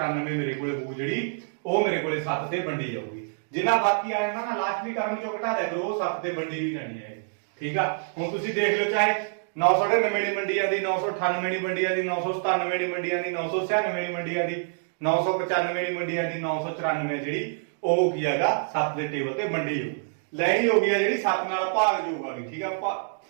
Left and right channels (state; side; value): silent; left; digital silence